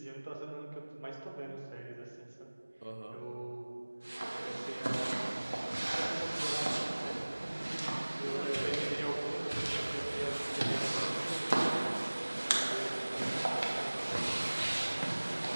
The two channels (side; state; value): both; inverted; correlation -1.00